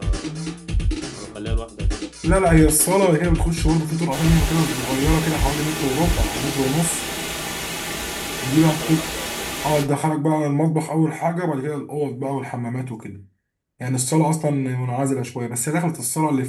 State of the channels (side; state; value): both; identical; correlation 1.00